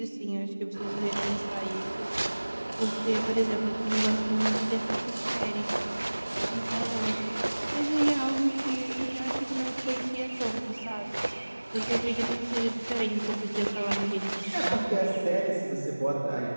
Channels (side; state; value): both; inverted; correlation -1.00